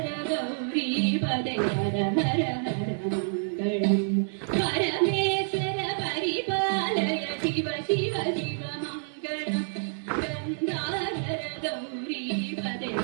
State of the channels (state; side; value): silent; left; digital silence